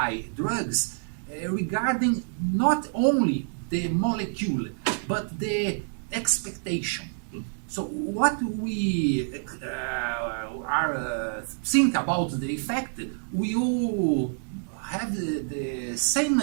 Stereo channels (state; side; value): silent; left; 60 dB below the other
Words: drugs regarding not only the molecule but the expectation. So what we think about the effect will have the same